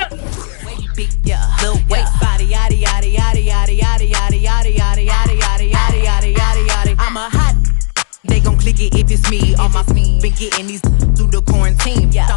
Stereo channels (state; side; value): silent; right; digital silence